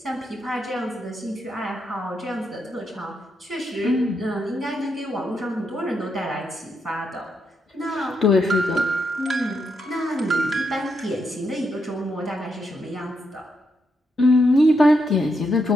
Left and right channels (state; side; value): normal; both; correlation 0.81